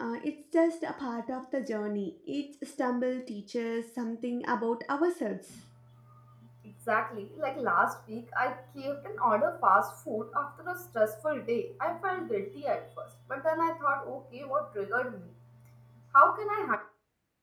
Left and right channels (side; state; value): both; identical; correlation 1.00